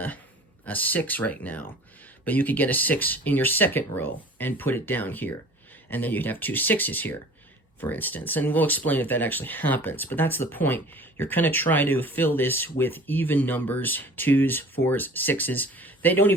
6 right now, but you could get a 6 in your 2nd row and put it down here. And then you'd have 2 6s here, for instance. And we'll explain if that actually happens, but that's the point. You're going to try to fill this with even numbers, 2s, 4s, 6s. They don't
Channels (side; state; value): both; normal; correlation 0.45